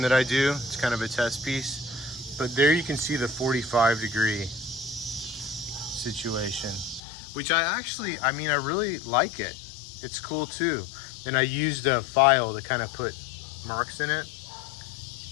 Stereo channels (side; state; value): right; drops out; at 7.0 s